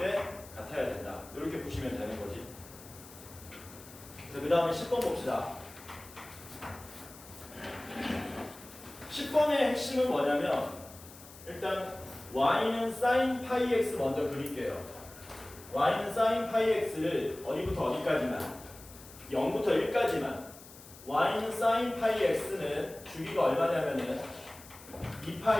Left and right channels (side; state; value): left; noise; hiss, 19 dB below the sound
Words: 같아야 된다. 이렇게 보시면 되는 거지. 그래서 그 다음에 10번 봅시다. 10번의 핵심은 뭐냐면 일단 y는 sin 파이 x 먼저 그릴게요. y는 sin 파이 x를 어디부터 어디까지만 0부터 1까지만 y는 sin 파이 x는 주기가 얼마냐면은